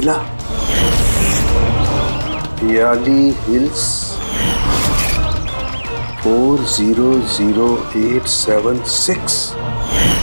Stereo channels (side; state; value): both; inverted; correlation -1.00